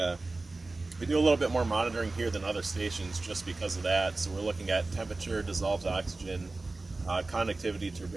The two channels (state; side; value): quieter; left; 3.3 dB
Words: a little bit more monitoring here than other stations just because of that. So we're looking at temperature, dissolved oxygen, conductivity,